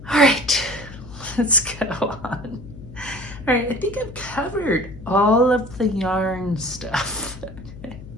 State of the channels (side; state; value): left; noise; hum, 15 dB below the sound